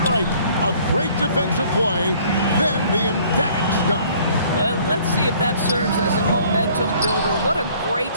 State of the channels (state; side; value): inverted; both; correlation -0.57